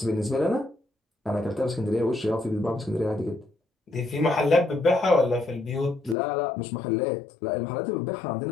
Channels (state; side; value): drops out; right; at 6.2 s